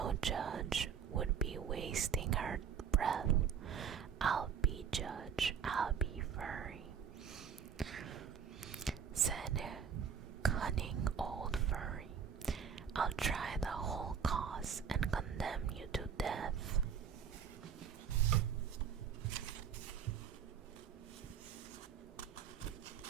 judge, would be wasting her breath. I'll be judge, I'll be furry," said cunning old furry. "I'll try the whole cause and condemn you to death."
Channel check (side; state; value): left; quieter; 7.4 dB